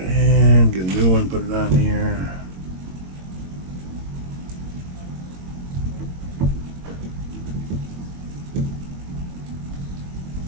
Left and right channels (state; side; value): late; left; 22 ms